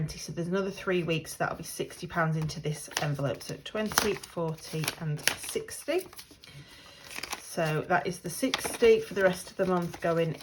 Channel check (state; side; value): identical; both; correlation 1.00